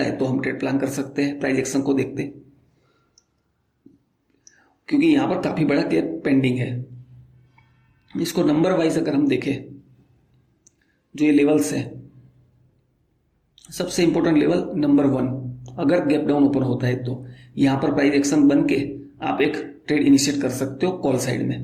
तो हम ट्रेड प्लान कर सकते हैं प्राइस एक्शन को देखते, क्योंकि यहां पर काफी बड़ा गैप पेंडिंग है। इसको नंबर वाइज अगर हम देखें, जो ये लेवल्स है, सबसे इंपॉर्टेंट लेवल नंबर 1 अगर गैप डाउन ओपन होता है तो यहां पर प्राइस एक्शन बन के आप एक ट्रेड इनिशिएट कर सकते हो कॉल साइड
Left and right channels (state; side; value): identical; both; correlation 1.00